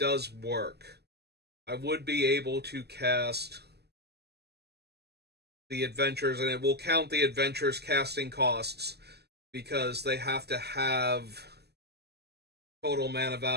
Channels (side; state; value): left; late; 0.48 ms